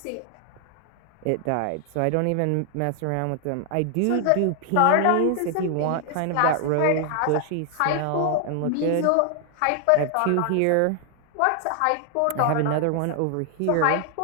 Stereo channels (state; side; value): different; both; correlation 0.00